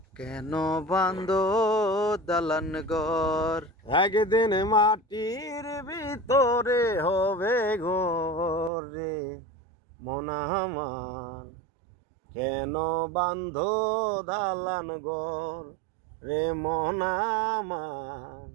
কেন বাঁধো দালান ঘর। একদিন মাটির ভিতরে হবে ঘর রে মন আমার, কেন বাঁধো দালান ঘর রে মন আমার,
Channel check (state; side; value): drops out; left; at 8.7 s